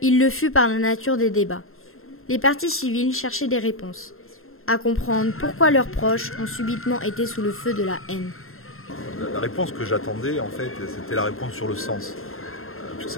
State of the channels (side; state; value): right; late; 0.61 ms